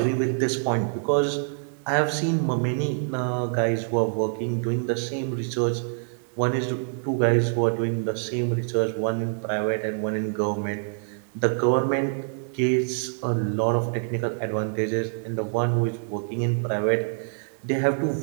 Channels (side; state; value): left; silent; 61 dB below the other